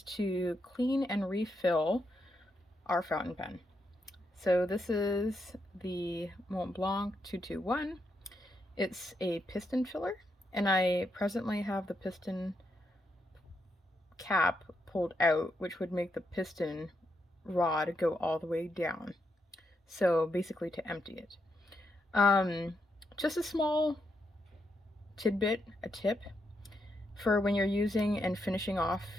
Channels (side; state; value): both; normal; correlation 0.81